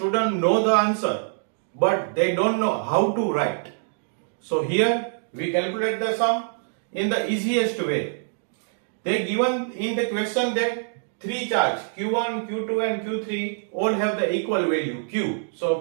know the answer, but they don't know how to write. So here we calculate the sum in the easiest way. They given in the question that three charge Q1, Q2 and Q3 all have the equal value Q.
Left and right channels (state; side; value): silent; left; digital silence